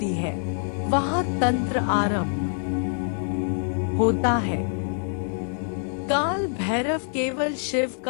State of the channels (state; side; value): silent; right; digital silence